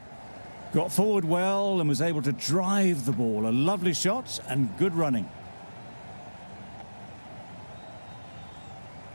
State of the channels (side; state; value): both; inverted; correlation -1.00